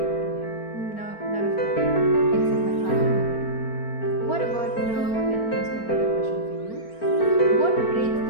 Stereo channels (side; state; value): right; late; 4.4 ms